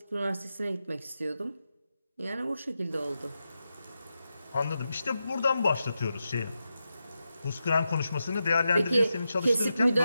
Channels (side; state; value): both; inverted; correlation -0.89